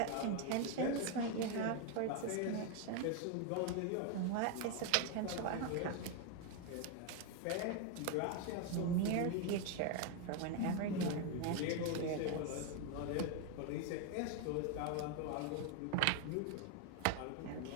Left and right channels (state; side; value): different; both; correlation 0.01